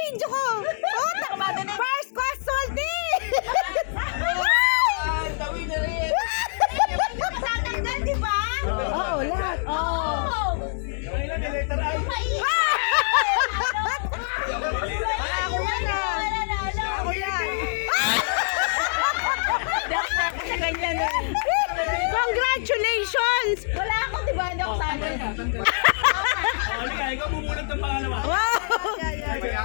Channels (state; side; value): silent; right; 62 dB below the other